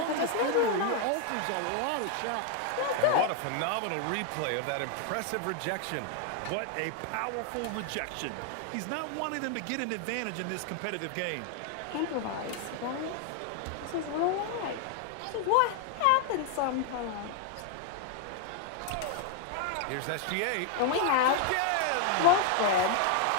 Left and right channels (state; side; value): different; both; correlation 0.00